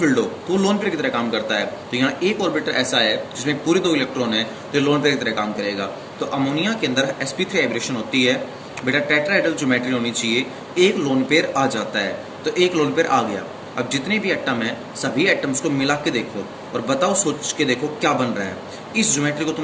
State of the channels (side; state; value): both; identical; correlation 1.00